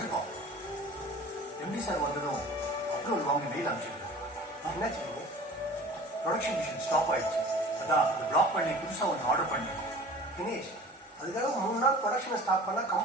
எம்டி சார் வந்ததும் அப்ரூவல் வாங்கி மெயில் அனுப்பிச்சிருக்கேன். என்னாச்சு? ப்ரொடக்ஷன் மிஷின் ஸ்டாப் ஆயிடுச்சு. அதான் அதை பிளாக் பண்ணி புதுசா ஒன்று ஆர்டர் பண்ணிருக்கோம். தினேஷ் அதுக்காக 3 நாள் ப்ரொடக்ஷனை ஸ்டாப் பண்ணா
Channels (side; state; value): both; normal; correlation 0.43